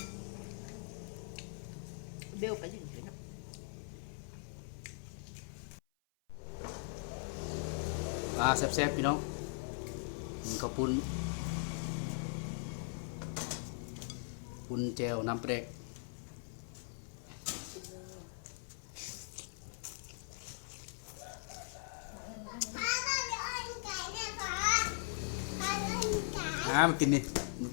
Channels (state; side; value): silent; right; 51 dB below the other